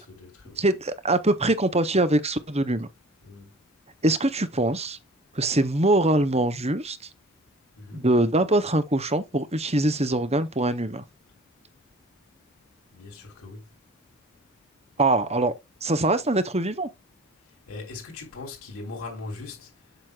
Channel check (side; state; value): both; normal; correlation 0.45